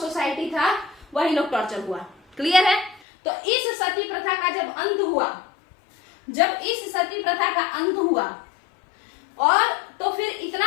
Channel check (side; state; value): right; drops out; at 3.0 s